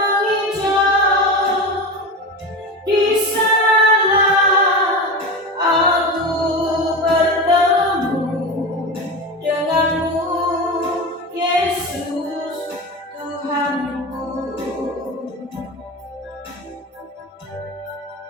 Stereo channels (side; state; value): both; normal; correlation 0.24